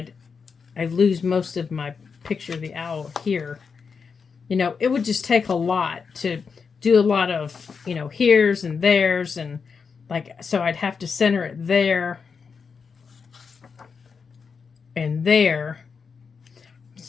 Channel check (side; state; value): right; quieter; 5.6 dB